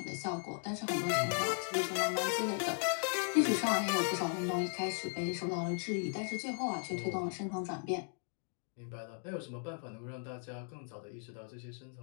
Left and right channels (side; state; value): right; silent; 53 dB below the other